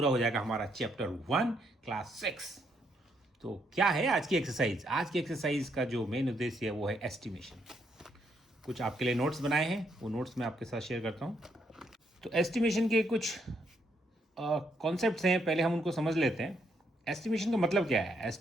हो जाएगा हमारा चैप्टर 1 क्लास 6। तो क्या है आज की एक्सरसाइज? आज की एक्सरसाइज का जो मेन उद्देश्य है वो है एस्टिमेशन। कुछ आपके लिए नोट्स बनाए हैं, वो नोट्स मैं आपके साथ शेयर करता हूँ। तो एस्टिमेशन के कुछ कॉन्सेप्ट्स हैं, पहले हम उनको समझ लेते हैं। एस्टिमेशन का मतलब क्या है?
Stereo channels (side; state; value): both; normal; correlation 0.74